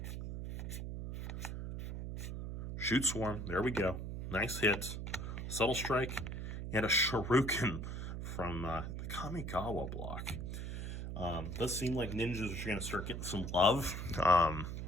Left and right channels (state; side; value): noise; right; hum, 5 dB below the sound